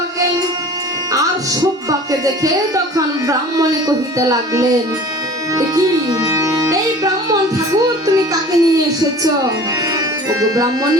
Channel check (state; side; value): normal; both; correlation 0.43